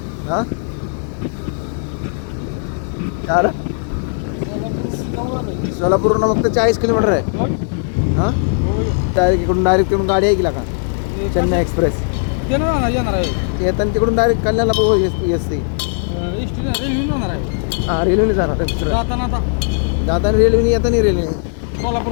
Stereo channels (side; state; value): right; silent; 60 dB below the other